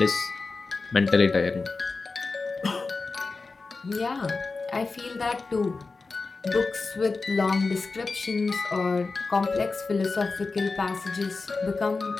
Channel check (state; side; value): quieter; right; 4.0 dB